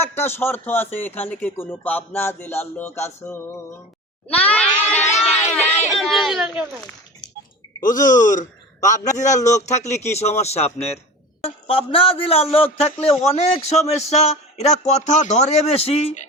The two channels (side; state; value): both; normal; correlation 0.34